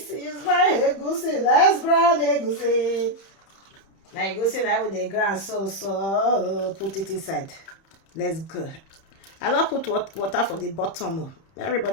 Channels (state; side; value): late; right; 30 ms